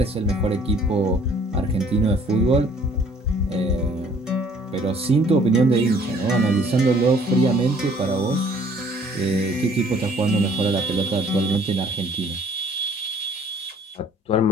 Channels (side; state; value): both; normal; correlation 0.58